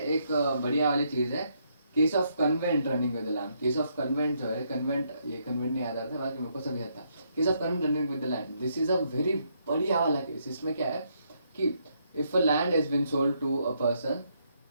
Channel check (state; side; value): inverted; both; correlation -0.75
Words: एक बढ़िया वाली चीज़ है case of covenant running with the land, case of convent जो है, कन्वेंट, ये कन्वेंट नहीं याद आ रहा था, बाकी मेरे को सब याद था. Case of covenant running with the land, this is a very बढ़िया वाला केस. इसमें क्या है कि if a land has been sold to a person